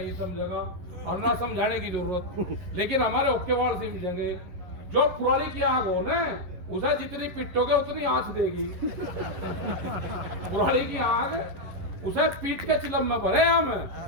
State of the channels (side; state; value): left; late; 11 ms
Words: समझेगा, और ना समझाने की जरूरत। लेकिन हमारे ओके वाल से मिलेंगे। जो पुरानी की आग हो ना, उसे जितनी पिटोगे उतनी आंच देगी। पुरानी की आग उसे पीट के चिलम में भरे हम।